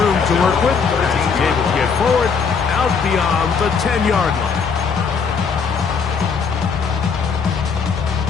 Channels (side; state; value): right; quieter; 5.7 dB